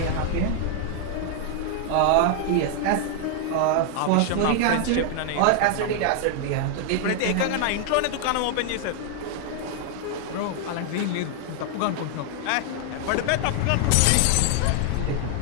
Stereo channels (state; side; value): different; both; correlation 0.00